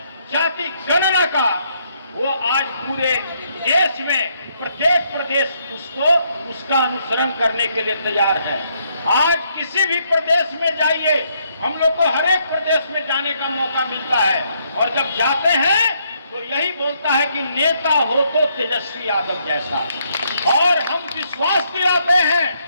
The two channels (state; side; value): inverted; both; correlation -0.73